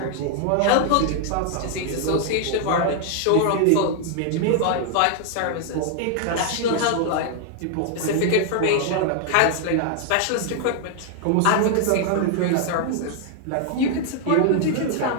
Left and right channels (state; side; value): different; both; correlation 0.00